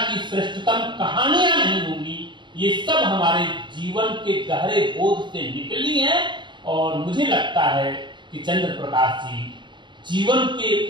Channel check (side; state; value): left; late; 0.23 ms